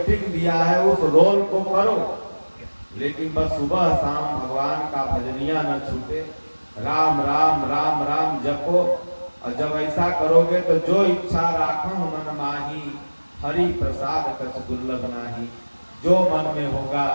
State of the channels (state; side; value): inverted; both; correlation -1.00